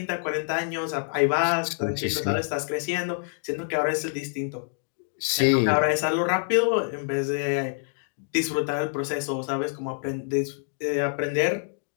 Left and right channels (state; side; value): silent; right; digital silence